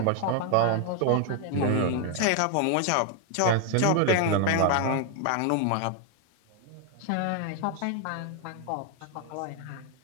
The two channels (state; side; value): different; both; correlation 0.00